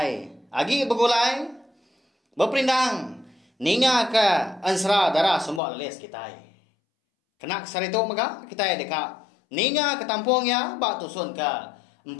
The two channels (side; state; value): right; drops out; at 5.6 s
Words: agi begulai berpindang ninga ke Ensera darah semua leles kita. Kena kesar itu maka kita dekat ninga ke tampung ya ba tusun ke 45.